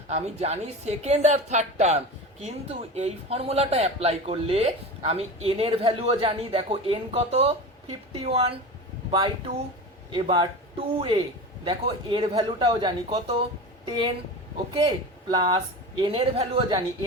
আমি জানি সেকেন্ড আর থার্ড টার্ম। কিন্তু এই ফর্মুলাটা অ্যাপ্লাই করলে আমি এন এর ভ্যালুও জানি। দেখো এন কত, 51/2। এবার 2a, দেখো এর ভ্যালুটাও জানি কত, 10। ওকে, প্লাস এন এর ভ্যালুও জানি,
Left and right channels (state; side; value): normal; both; correlation 0.29